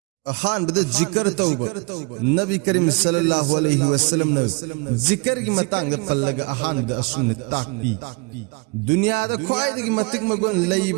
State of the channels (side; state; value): left; quieter; 28.9 dB